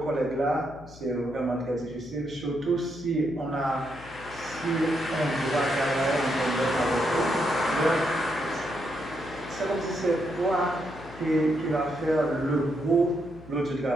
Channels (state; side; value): noise; left; hum, 19 dB below the sound